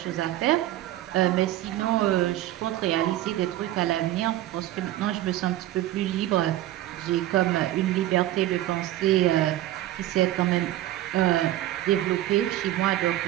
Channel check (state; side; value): quieter; left; 14.4 dB